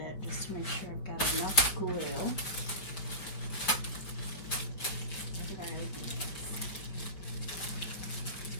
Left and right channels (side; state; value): right; late; 5.2 ms